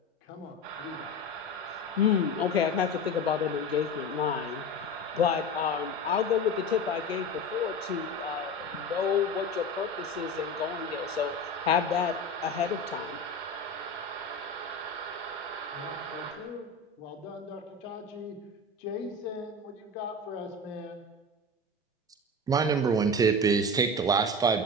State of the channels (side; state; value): both; normal; correlation 0.28